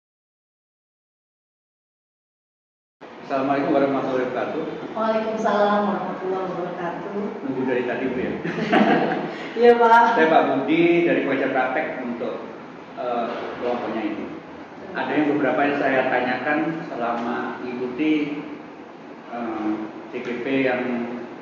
warahmatullahi wabarakatuh. Waalaikumsalam warahmatullahi wabarakatuh. Nunggu dari tadi Bu ya. Iya Pak. Saya Pak Budi dari Pelajar Praktek untuk kelompoknya ini. Ada yang beberapa yang saya tanyakan selama mengikuti CGP yang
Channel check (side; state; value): both; identical; correlation 1.00